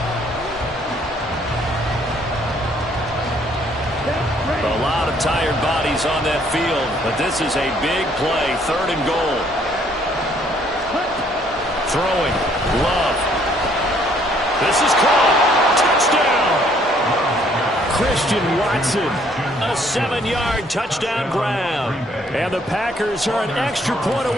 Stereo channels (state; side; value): normal; both; correlation 0.64